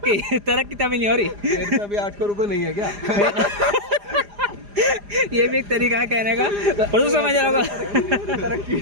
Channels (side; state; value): left; late; 4.9 ms